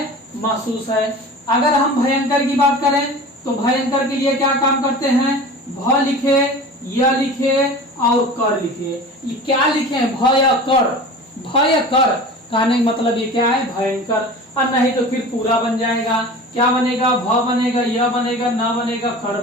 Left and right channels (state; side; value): normal; both; correlation 0.37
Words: महसूस है। अगर हम भयंकर की बात करें तो भयंकर के लिए क्या काम करते हैं, भ लिखे, य लिखे और कर लिखे। ये क्या लिखे, भ या कर, भ या कर कहने का मतलब ये क्या है, भयंकर। और नहीं तो फिर पूरा बन जाएगा, क्या बनेगा, भ बनेगा, य बनेगा, न बनेगा, कर